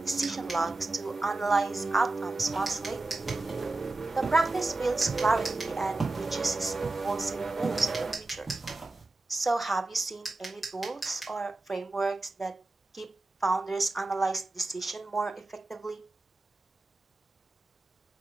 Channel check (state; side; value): quieter; left; 3.1 dB